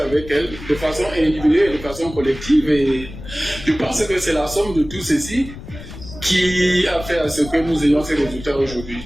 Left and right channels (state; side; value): noise; left; rumble, 13 dB below the sound